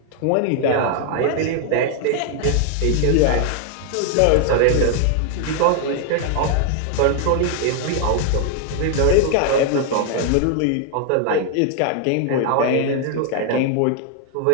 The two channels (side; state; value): both; different; correlation 0.00